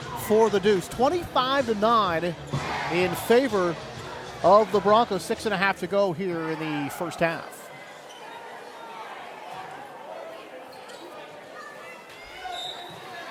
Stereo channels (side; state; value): both; identical; correlation 1.00